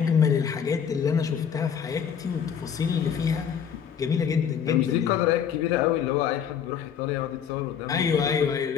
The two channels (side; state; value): right; quieter; 7.9 dB